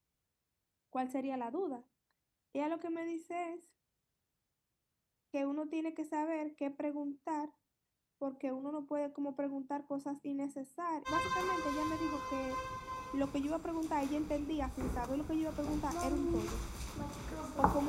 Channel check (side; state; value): both; identical; correlation 1.00